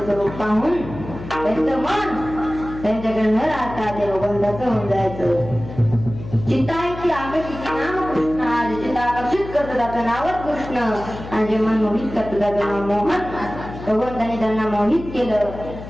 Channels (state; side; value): noise; left; hum, 12 dB below the sound